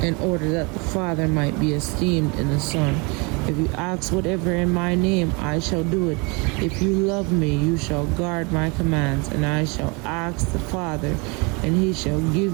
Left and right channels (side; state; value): left; quieter; 29.6 dB